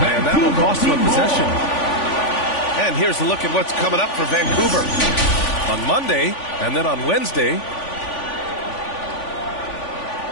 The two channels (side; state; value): right; late; 3.5 ms